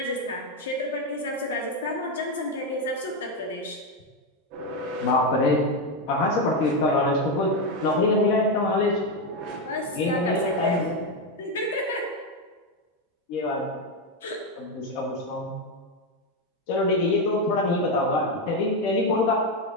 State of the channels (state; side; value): normal; both; correlation 0.08